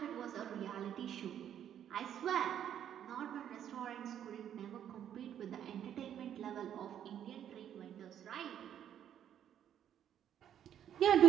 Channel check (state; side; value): quieter; left; 9.9 dB